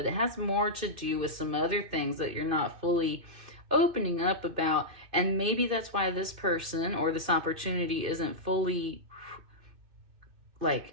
it has more to do with some other things that you're not fully opening up about. And maybe that's why this person or this opportunity isn't fully, like,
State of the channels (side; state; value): left; late; 2.6 ms